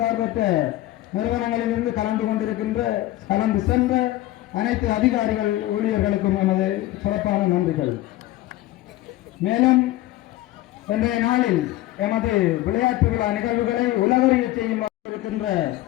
நிறுவனங்களிலிருந்து கலந்து சென்ற அனைத்து அதிகாரிகள் ஊழியர்களுக்கும் எமது சிறப்பான நன்றிகள். மேலும் இன்றைய நாளில் எமது விளையாட்டு விழா நிகழ்வுகளை உலகறிய செய்யும் இருக்கின்ற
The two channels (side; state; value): right; quieter; 15.8 dB